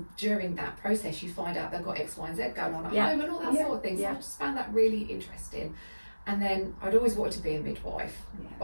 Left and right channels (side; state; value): both; inverted; correlation -1.00